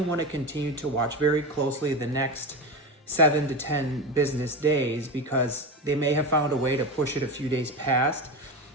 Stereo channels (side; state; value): both; normal; correlation 0.21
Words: want to continue to watch very closely the next 7 to 10 business days, because they may have found a way to push it a few days past,